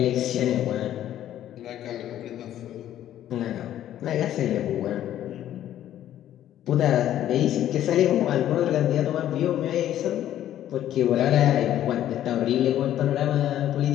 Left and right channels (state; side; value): quieter; right; 11.9 dB